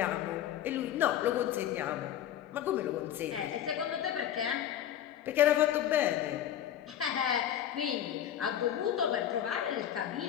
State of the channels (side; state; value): right; quieter; 10.8 dB